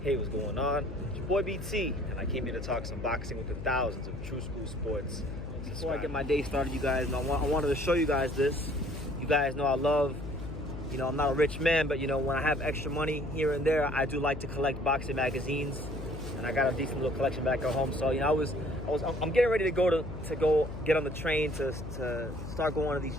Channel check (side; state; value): left; noise; hum, 9 dB below the sound